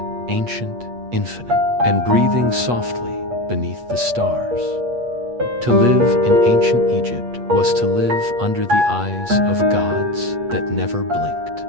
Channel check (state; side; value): late; left; 8.3 ms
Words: ancient, infinite, and breathing softly beneath the stars. To live in ancient Egypt was to live under the eyes of gods that never blinked.